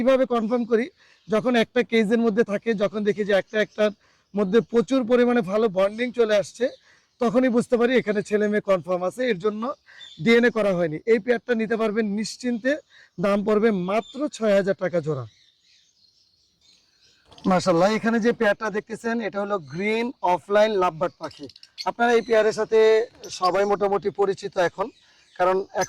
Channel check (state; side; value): identical; both; correlation 1.00